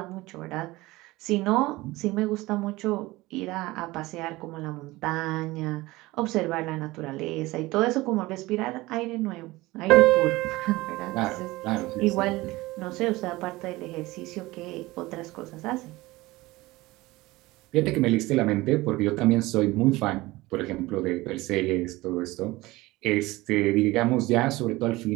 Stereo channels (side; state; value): left; quieter; 20.0 dB